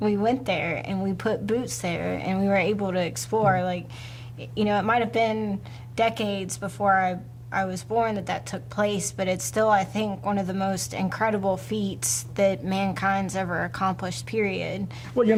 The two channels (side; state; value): both; identical; correlation 1.00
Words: went there and we put boots there and we were able to explore. Like, you know, it might have been decades before I was born that took place, but it's still, I think, one of the most incredible feats that mankind's ever accomplished, period. Well, you